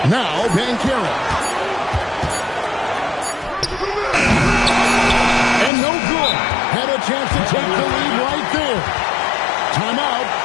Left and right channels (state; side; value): drops out; right; at 5.7 s